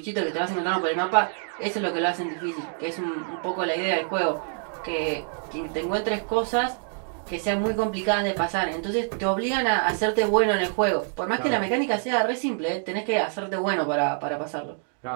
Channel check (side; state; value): left; silent; 55 dB below the other